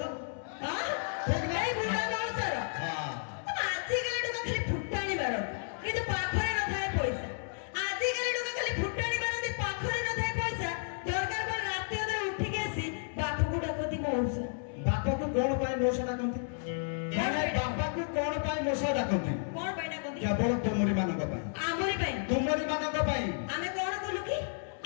ହଁ ଏଇ ବୁଢା ମଉସର। ହଁ ଆଜିକାଲି ଟଙ୍କା ଖାଲି ଫୁଟାଣି ମାରନ୍ତି କିନ୍ତୁ ପାଖରେ ନଥାଏ ପଇସା। ଆଜିକାଲି ଟଙ୍କା ଖାଲି ଫୁଟାଣି ମାରନ୍ତି ପାଖରେ ନଥାଏ ପଇସା। ଦରକାର ପଡେ ରାତି ଅଧରେ ଉଠିକି ଆସି ବାପକୁ ଡାକନ୍ତି ମଉସା। ବାପାକୁ କଣ ପାଇଁ ମଉସା ଡାକନ୍ତି? ବାପାକୁ କଣ ପାଇଁ ମଉସା ଡାକନ୍ତି? କଣ ପାଇଁ ଡାକନ୍ତି? କେବଳ ତୁମରି ମାନଙ୍କ ପାଇଁ। ଆମରି ପାଇଁ? ତୁମରି ମାନଙ୍କ ପାଇଁ। ଆମେ କଣ କଲୁ କି?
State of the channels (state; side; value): silent; right; 56 dB below the other